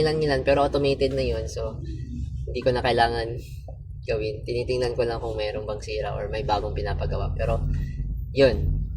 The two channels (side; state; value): both; identical; correlation 1.00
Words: pero automated na yun, so hindi ko na kailangan gawin. Tinitingnan ko lang kung mayroong bang sira or may bagong pinapagawa. Pero yun,